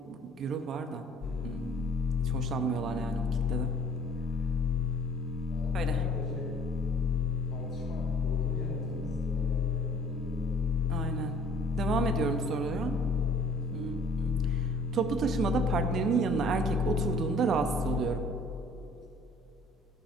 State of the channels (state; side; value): normal; both; correlation 0.52